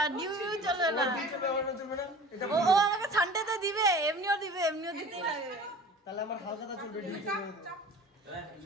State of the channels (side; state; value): both; normal; correlation 0.41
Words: ডিউ চলবে না। ও আমাকে সানডেতে দিবে, এমনিও দিতেই লাগে। তাহলে আমার হালকাটা চলবে।